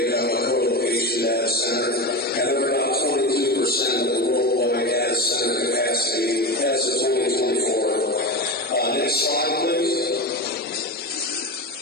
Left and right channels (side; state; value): both; normal; correlation 0.20